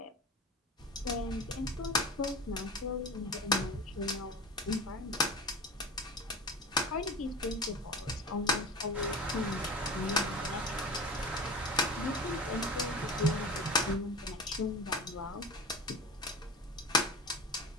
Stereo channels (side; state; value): both; normal; correlation 0.33